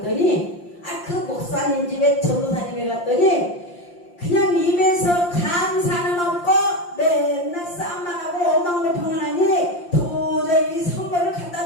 그 목사님 집에 전도사님에 갔더니 그냥 입에서 감사는 없고 맨날 싸움만 하고 원망불평을 하니 도저히 선물을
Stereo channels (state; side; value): late; right; 5.7 ms